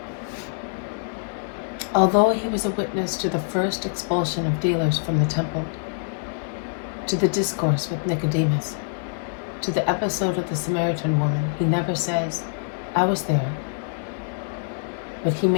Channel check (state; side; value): silent; right; digital silence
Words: Although he was a witness to the first expulsion of dealers from the temple, to the discourse with Nicodemus, to the episode of the Samaritan woman, he never says, "I was there." But he